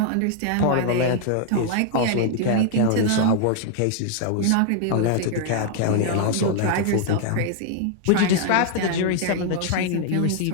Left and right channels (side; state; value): both; different; correlation 0.00